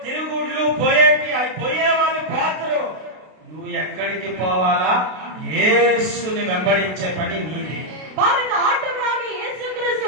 తిరుగుళ్ళు పోయేటి అవి పోయే వాళ్ళు పోతారు. నువ్వు ఎక్కడికి పోవాలా? యేసుని వెంబడించే పని నీది. பாருங்க, ஆண்டவராகிய இயேசு கிறிஸ்து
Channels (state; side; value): late; left; 32 ms